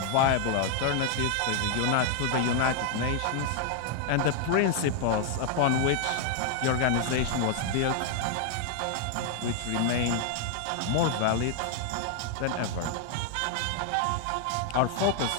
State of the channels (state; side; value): different; both; correlation 0.00